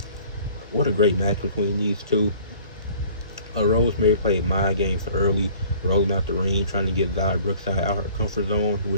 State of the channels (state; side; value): inverted; both; correlation -0.52